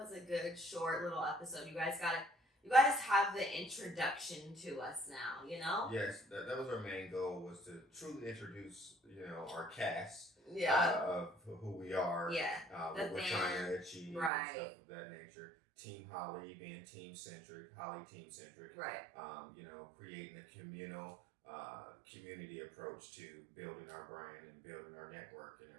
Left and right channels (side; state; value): left; drops out; at 14.3 s